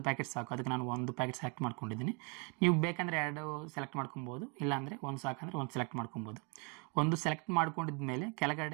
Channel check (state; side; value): quieter; left; 32.8 dB